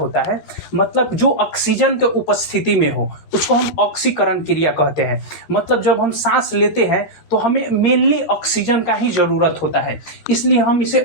है? मतलब जो ऑक्सीजन के उपस्थिति में हो उसको हम ऑक्सीकरण क्रिया कहते हैं। मतलब जब हम सांस लेते हैं तो हमें मेनली ऑक्सीजन का ही जरूरत होता है, इसलिए हम इसे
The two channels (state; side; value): late; right; 13 ms